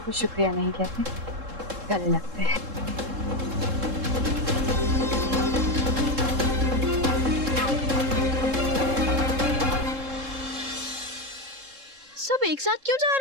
को शुक्रिया नहीं कहते, गले लगते हैं। सब एक साथ क्यों जा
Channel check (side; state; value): left; late; 3.7 ms